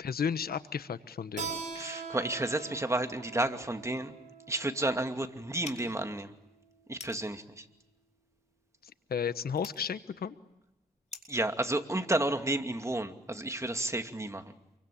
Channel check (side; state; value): both; normal; correlation 0.52